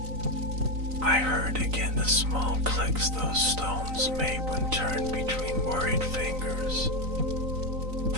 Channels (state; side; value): late; left; 3.9 ms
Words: I heard again the small clicks those stones made when turned between worried fingers.